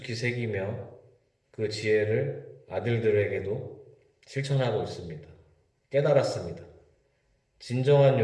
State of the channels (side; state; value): both; identical; correlation 1.00